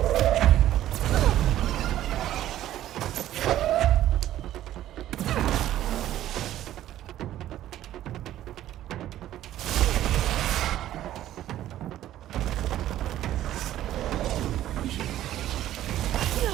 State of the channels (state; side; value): quieter; left; 13.0 dB